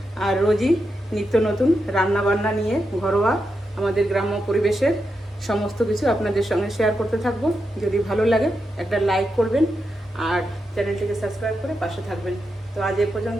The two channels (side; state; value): both; normal; correlation 0.86